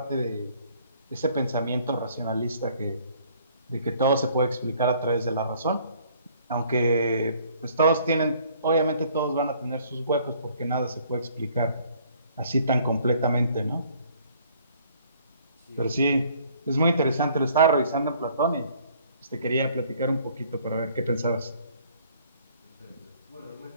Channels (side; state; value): both; inverted; correlation -0.59